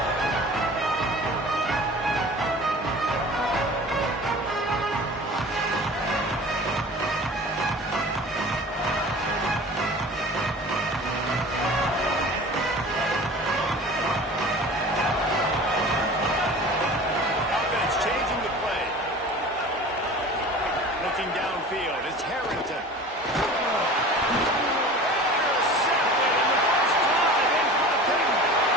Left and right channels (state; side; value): normal; both; correlation 0.40